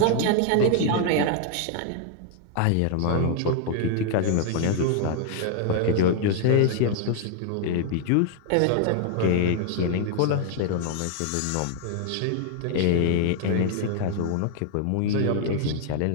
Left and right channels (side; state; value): both; different; correlation 0.00